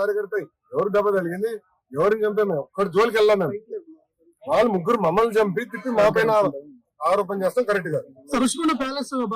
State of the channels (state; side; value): identical; both; correlation 1.00